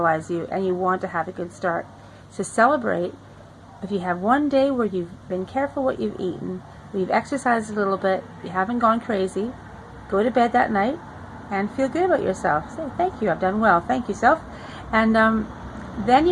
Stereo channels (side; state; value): both; identical; correlation 1.00